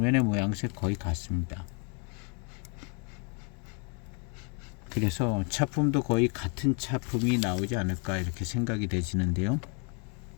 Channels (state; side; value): quieter; right; 36.9 dB